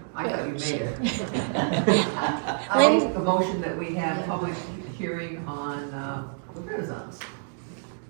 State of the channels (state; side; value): silent; left; digital silence